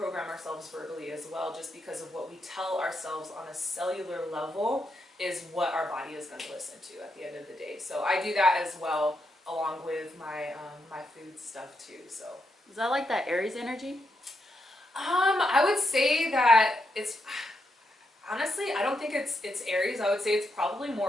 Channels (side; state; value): both; normal; correlation 0.81